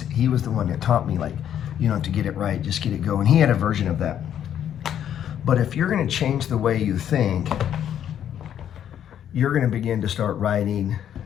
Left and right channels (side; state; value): right; quieter; 9.9 dB